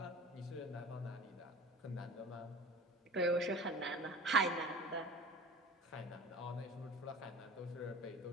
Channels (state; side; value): normal; both; correlation 0.40